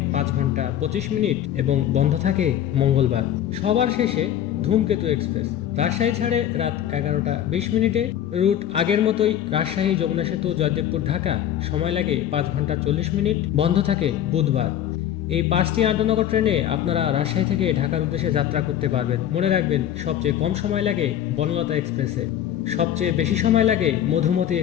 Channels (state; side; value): quieter; right; 10.8 dB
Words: 5 ঘন্টা 25 মিনিট এবং বন্ধ থাকে মঙ্গলবার। সবার শেষে ধূমকেতু এক্সপ্রেস রাজশাহী ছাড়ে রাত 11টা 20 মিনিটে। রুট আগের মতোই রাজশাহী, যমুনা সেতু, জয়দেবপুর, ঢাকা। সময় লাগে 5 ঘন্টা 40 মিনিট। বন্ধ থাকে বুধবার। এই 5টি আন্তঃনগর ট্রেনে আপনারা রাজশাহী থেকে ঢাকার উদ্দেশ্যে যাত্রা করতে পারবেন। মনে রাখবেন, সবচেয়ে কম সময় লাগে বনলতা এক্সপ্রেসে, সবচেয়ে বেশি সময় লাগে মধুমতি